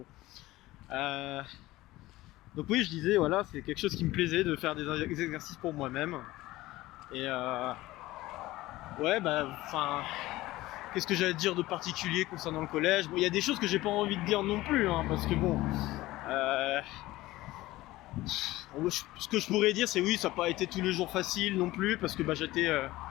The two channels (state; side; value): quieter; right; 17.8 dB